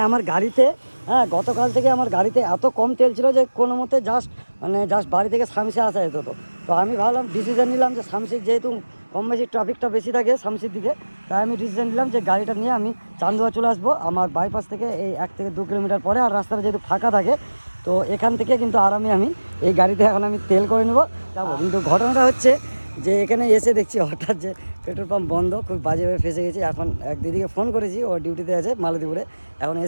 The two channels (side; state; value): both; inverted; correlation -1.00